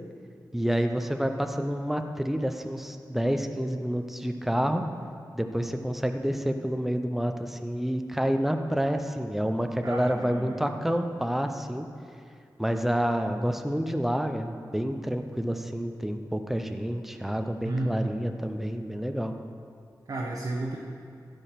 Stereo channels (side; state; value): both; normal; correlation 0.97